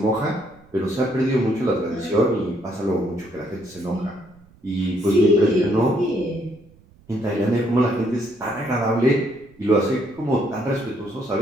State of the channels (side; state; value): right; noise; rumble, 28 dB below the sound